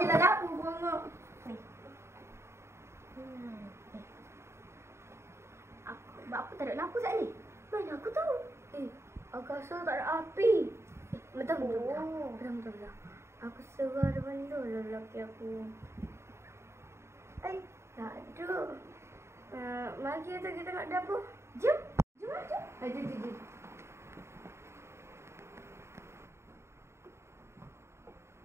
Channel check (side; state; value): left; late; 0.13 ms